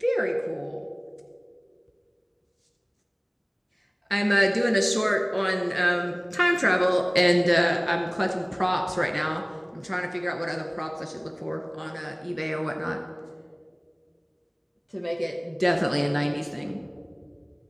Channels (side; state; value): both; identical; correlation 1.00